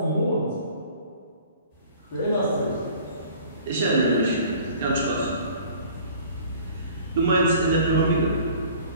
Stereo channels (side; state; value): both; inverted; correlation -0.49